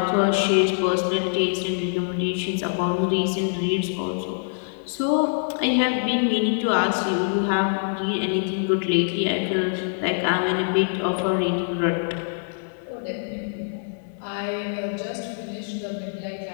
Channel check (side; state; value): right; silent; digital silence